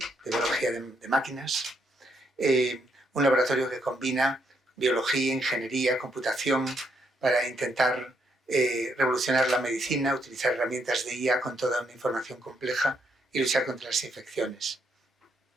de biología de máquinas, un laboratorio que combina biología, ingeniería, computación, para intentar revolucionar la medicina, utilizar herramientas de IA con toda una información compleja y luchar contra las infecciones.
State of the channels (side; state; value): both; normal; correlation 0.76